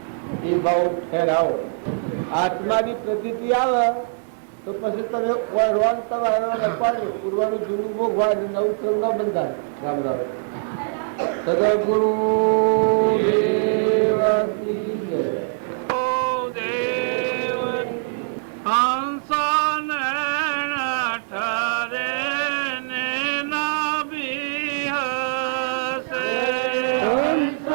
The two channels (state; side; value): silent; left; digital silence